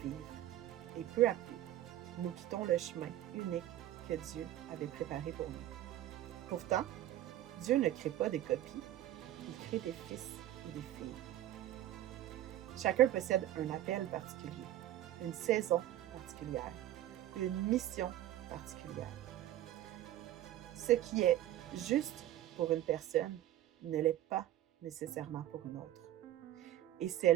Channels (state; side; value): quieter; left; 13.2 dB